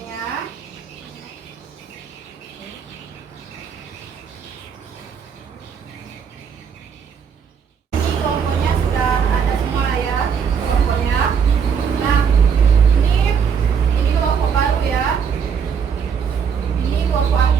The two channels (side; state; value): left; quieter; 6.8 dB